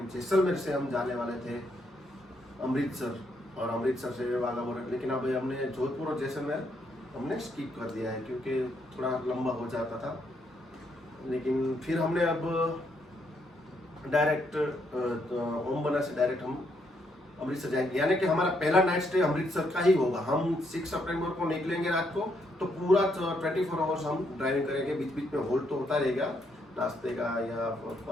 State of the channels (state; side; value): normal; both; correlation 0.75